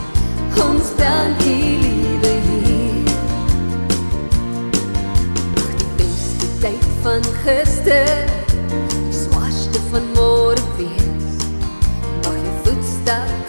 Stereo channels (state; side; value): inverted; both; correlation -1.00